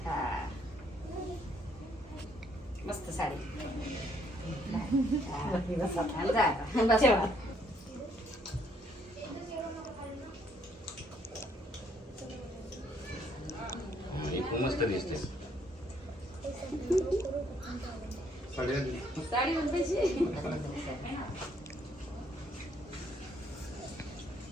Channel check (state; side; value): normal; both; correlation 0.68